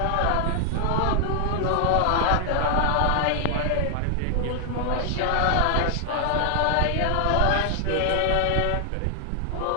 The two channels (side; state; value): both; different; correlation 0.00